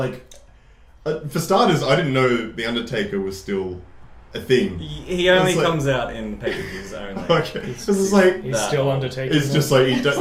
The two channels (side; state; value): both; identical; correlation 1.00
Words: for starters, I didn't know The Undertaker was still a thing. He only comes out in pay-per-views only. Okay. This is like... He's still Undertaker. It's just like, does